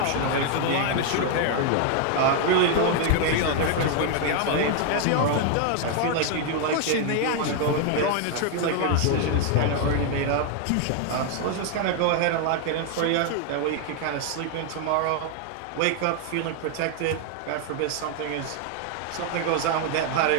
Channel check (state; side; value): different; both; correlation 0.01